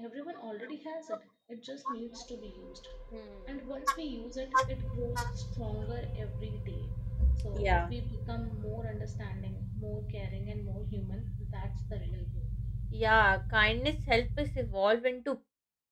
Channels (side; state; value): both; identical; correlation 1.00